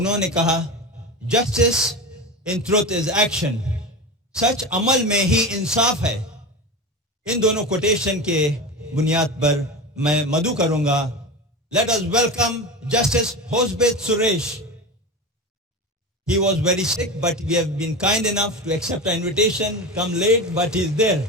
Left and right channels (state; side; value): normal; both; correlation 0.25